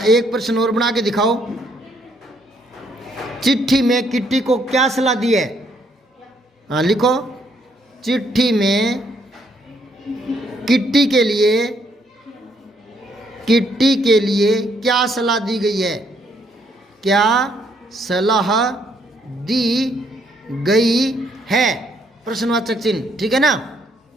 प्रश्न और बना के दिखाओ। चिट्ठी में किट्टी को क्या सलाह दी है? हाँ लिखो, चिट्ठी में किट्टी के लिए क्या सलाह दी गई है? क्या सलाह दी गई है? प्रश्नवाचक चिन्ह, ठीक है ना?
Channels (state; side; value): normal; both; correlation 0.71